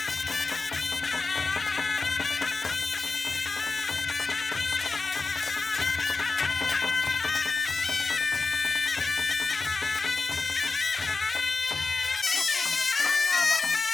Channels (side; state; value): right; quieter; 4.0 dB